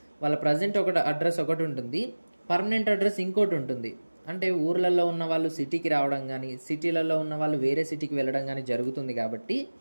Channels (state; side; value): inverted; both; correlation -1.00